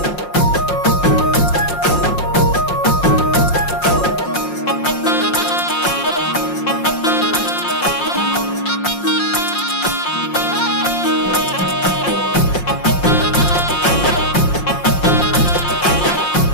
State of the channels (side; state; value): right; late; 5.6 ms